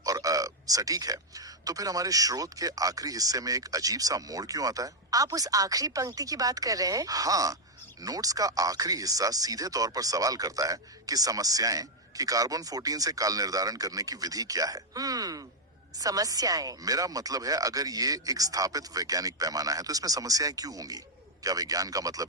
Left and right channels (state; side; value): normal; both; correlation -0.02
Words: और सटीक है, तो फिर हमारे स्रोत के आखिरी हिस्से में एक अजीब सा मोड़ क्यों आता है? आप उस आखिरी पंक्ति की बात कर रहे हैं? हाँ, नोट्स का आखिरी हिस्सा सीधे तौर पर सवाल करता है कि समस्याएं कि कार्बन 14 से काल निर्धारण करने की विधि क्या है। समस्याएं। मेरा मतलब है, अगर ये एक स्थापित वैज्ञानिक पैमाना है तो इसमें समस्याएं क्यों होंगी? क्या विज्ञान का